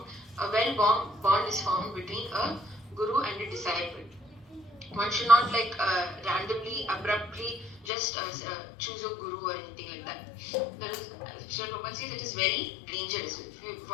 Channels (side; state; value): right; drops out; at 7.9 s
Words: a bond is formed between a guru and a disciple. One should not randomly, abruptly just choose a guru or anything like that. That is, Srila Prabhupada says, it is very dangerous.